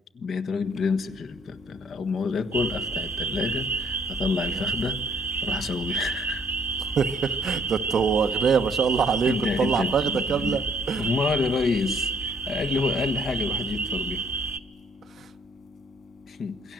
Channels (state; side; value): normal; both; correlation 0.63